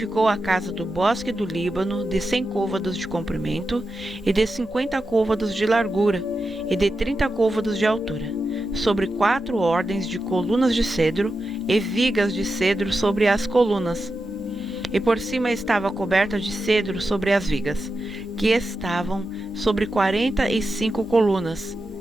a casa do bosque do Líbano, de 100 côvados de comprimento, e de 50 côvados de largura, e de 30 côvados de altura, sobre 4 ordens de colunas de cedro, e vigas de cedro sobre as colunas. E por cima estava coberta de cedro sobre as vigas, que estavam sobre 45 colunas,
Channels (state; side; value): noise; right; hum, 25 dB below the sound